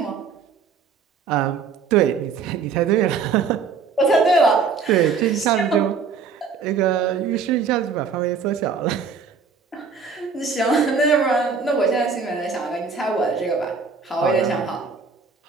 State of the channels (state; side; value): quieter; left; 5.3 dB